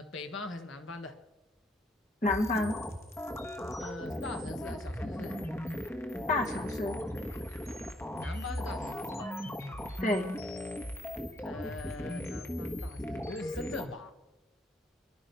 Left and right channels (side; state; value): both; normal; correlation 0.69